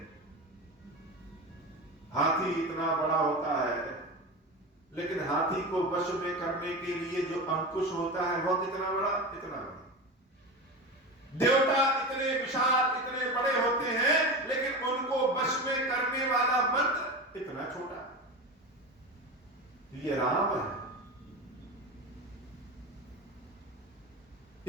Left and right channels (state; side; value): normal; both; correlation 0.25